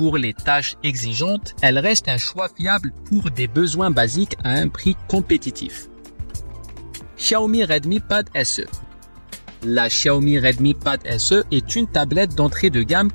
les tâches exigeantes, elle reste un choix fiable pour des besoins basiques à un prix compétitif. Xiaomi Redmi Pad SE. La Xiaomi Redmi Pad SE est une tablette d'entrée de gamme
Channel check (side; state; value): both; inverted; correlation -1.00